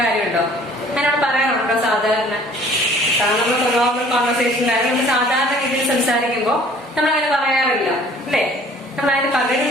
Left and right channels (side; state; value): both; normal; correlation 0.53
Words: കാര്യമുണ്ടോ? അങ്ങനെ പറയാറുണ്ടോ? സാധാരണ നമ്മൾ നോർമൽ കോൺവെർസേഷനിലായാലും നമ്മൾ സാധാരണ രീതിയിൽ സംസാരിക്കുമ്പോൾ നമ്മൾ അങ്ങനെ പറയാറില്ല അല്ലേ. നമ്മൾ അതിന് പകരം